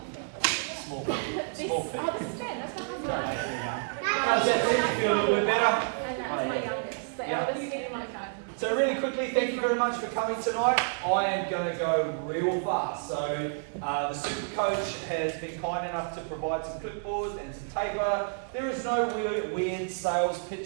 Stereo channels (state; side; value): silent; left; 58 dB below the other